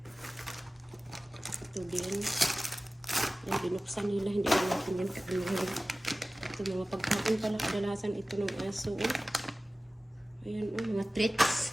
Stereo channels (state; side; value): normal; both; correlation 0.97